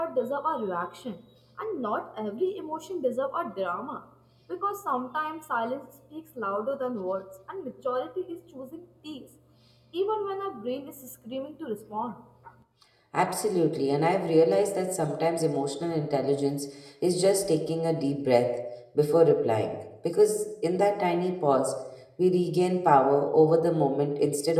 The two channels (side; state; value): both; identical; correlation 1.00